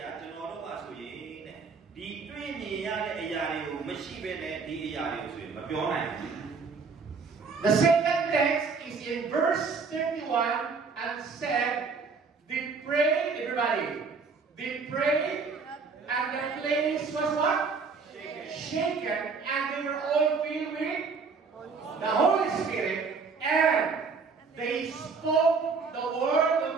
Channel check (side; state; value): left; quieter; 4.9 dB